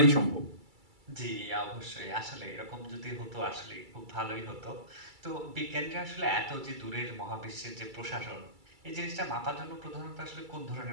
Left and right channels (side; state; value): left; late; 2.3 ms